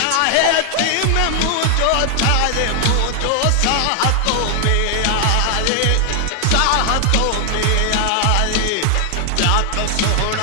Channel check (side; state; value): both; different; correlation 0.00